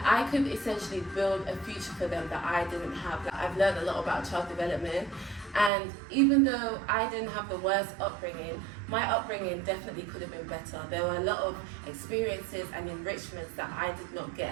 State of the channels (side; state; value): left; drops out; at 5.7 s